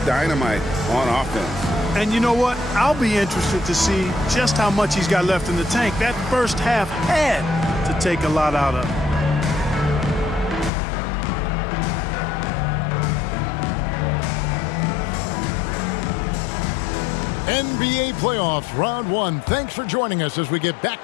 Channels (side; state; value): right; drops out; at 10.7 s